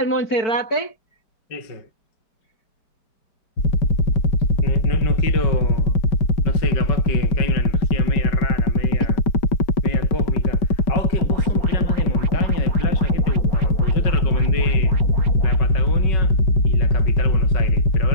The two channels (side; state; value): right; late; 5.1 ms